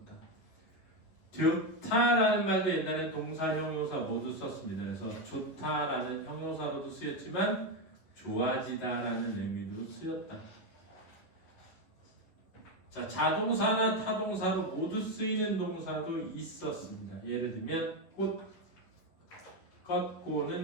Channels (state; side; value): late; right; 10 ms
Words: 좋다라는 말도 옛날에 동사, 형용사 모두 썼습니다. 그래서 좋다라는 형용사로도 쓰였지만 좋아지다라는 의미도 쓰였다. 자, 자동사나 타동사로 모두 쓰이는 동사도 있었습니다. 예를 들면 꽃,